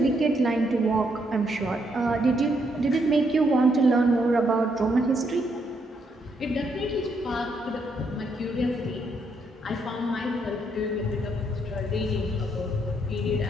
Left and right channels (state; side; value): normal; both; correlation 0.75